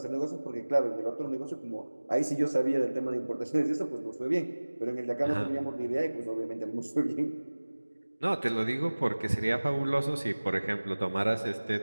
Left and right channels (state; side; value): inverted; both; correlation -1.00